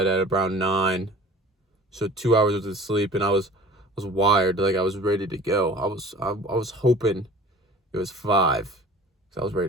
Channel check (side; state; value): both; normal; correlation 0.45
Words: at around 9. So 2 hours of sleep and I was wired, like I was ready to go. I was hoping it was 5 because I was ready